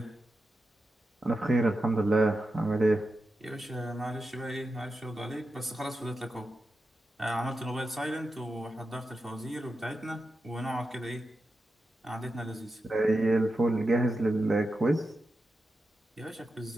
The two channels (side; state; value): both; normal; correlation 0.90